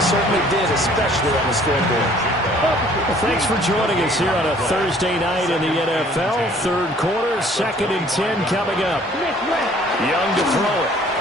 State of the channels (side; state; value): both; normal; correlation 0.56